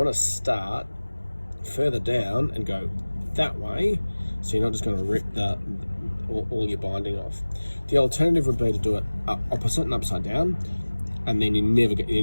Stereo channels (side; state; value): both; inverted; correlation -1.00